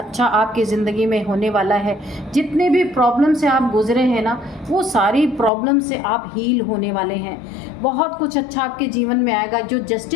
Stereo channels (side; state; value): right; drops out; at 5.5 s